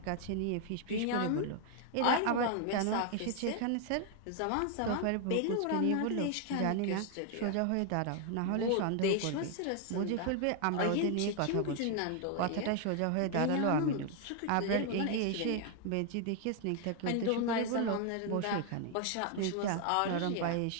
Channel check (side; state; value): both; different; correlation 0.00